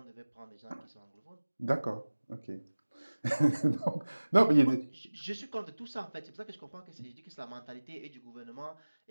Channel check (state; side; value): inverted; both; correlation -1.00